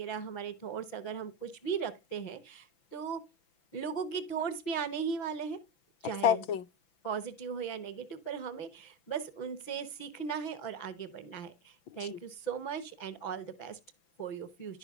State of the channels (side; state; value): right; late; 6.0 ms